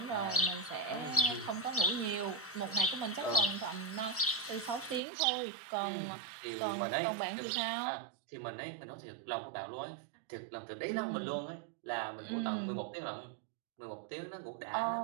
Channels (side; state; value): left; drops out; at 5.0 s